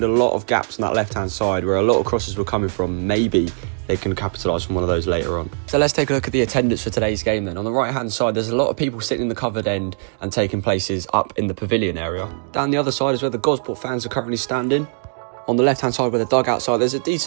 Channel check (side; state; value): left; silent; digital silence